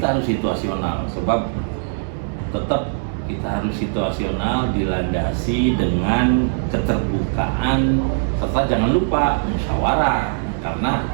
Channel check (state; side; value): silent; left; digital silence